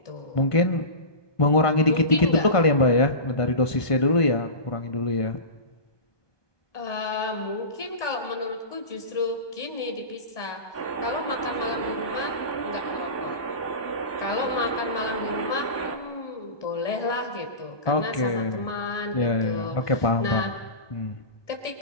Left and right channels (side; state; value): right; late; 1.2 ms